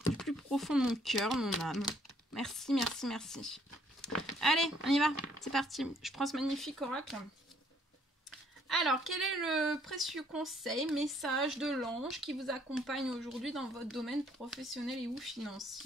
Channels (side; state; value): both; normal; correlation 0.65